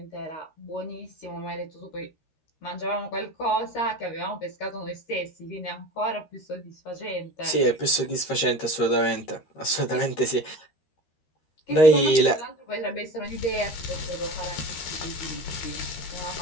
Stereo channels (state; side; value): late; right; 13 ms